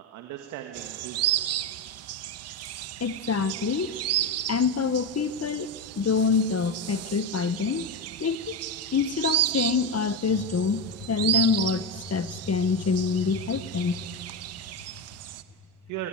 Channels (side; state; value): both; normal; correlation 0.14